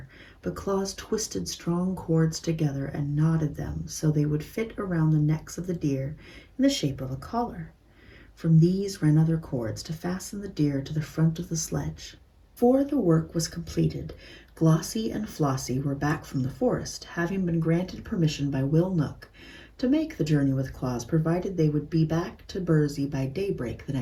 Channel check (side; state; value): both; identical; correlation 1.00